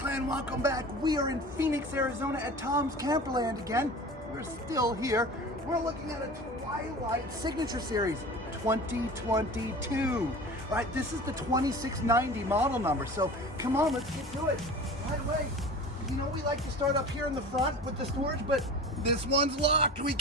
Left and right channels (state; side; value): normal; both; correlation 0.37